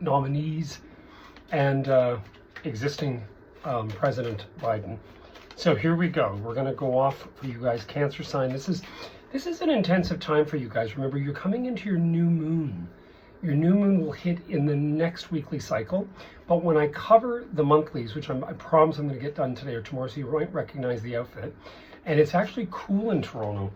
and existing President Biden. So here we go. We're going to go off for you guys, Cancer sign. This is an intensive time for you guys. Remember, you're coming into your new moon. Your new moon will hit in the next weekly cycle. But when I cover the monthlies, which I promise I'm going to get done today or tomorrow, so you might recognize the outfit. And it's actually cool in Toronto.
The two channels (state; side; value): identical; both; correlation 1.00